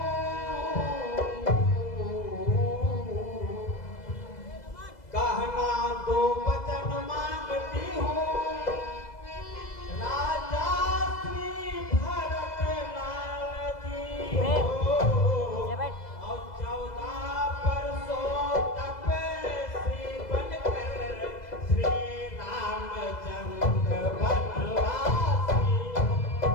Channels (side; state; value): right; late; 2.0 ms